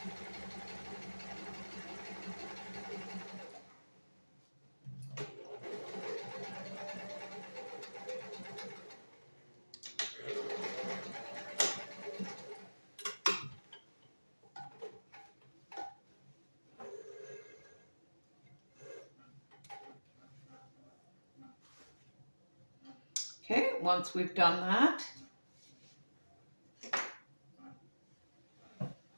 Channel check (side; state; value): both; inverted; correlation -1.00